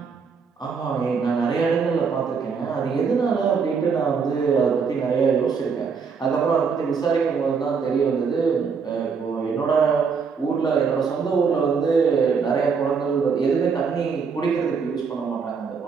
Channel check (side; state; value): left; quieter; 5.7 dB